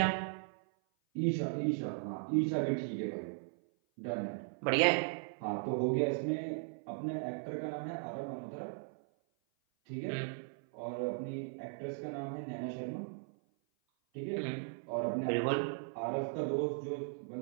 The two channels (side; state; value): left; silent; 53 dB below the other